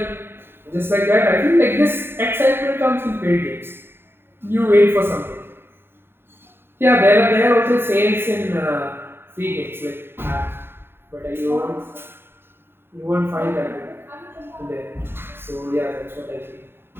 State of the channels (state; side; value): late; left; 0.11 ms